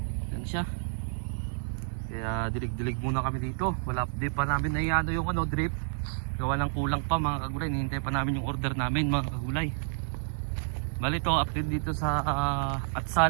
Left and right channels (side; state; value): left; silent; 58 dB below the other